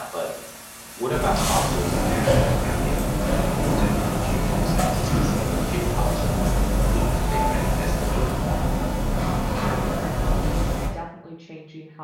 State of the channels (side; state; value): both; identical; correlation 1.00